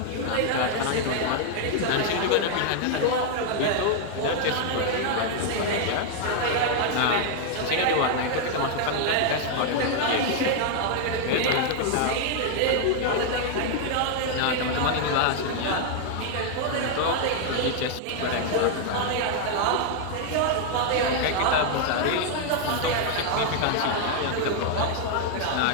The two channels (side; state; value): both; different; correlation 0.00